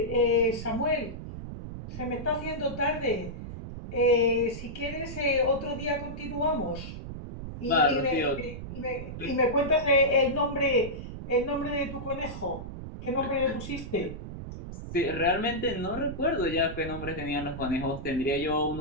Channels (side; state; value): right; noise; rumble, 9 dB below the sound